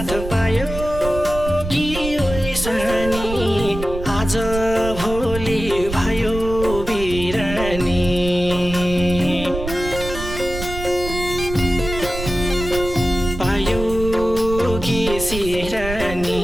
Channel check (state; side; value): noise; right; rumble, 8 dB below the sound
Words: पायो कि ओइसानी आज भोलि भयो बिरानी पायो कि सिरानी